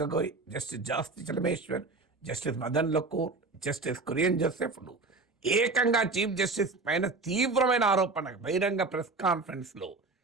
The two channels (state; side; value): quieter; left; 3.7 dB